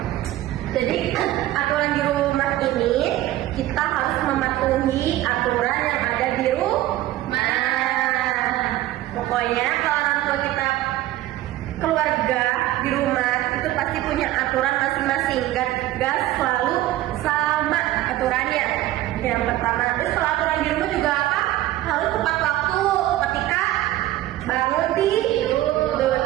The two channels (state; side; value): quieter; left; 15.2 dB